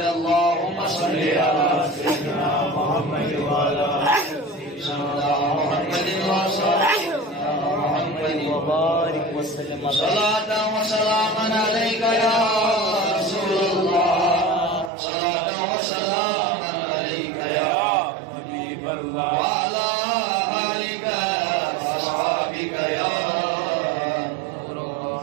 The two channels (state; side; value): drops out; left; at 14.9 s